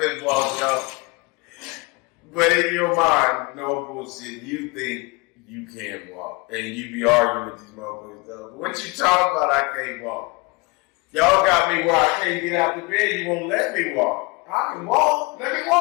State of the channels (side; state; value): right; quieter; 26.2 dB